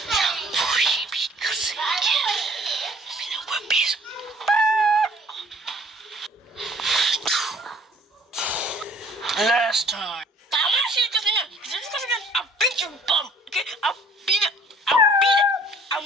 Last time. I want to see you cussing again. I'll beat your bum. Okay? I'll beat it. I'll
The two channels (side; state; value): both; normal; correlation 0.56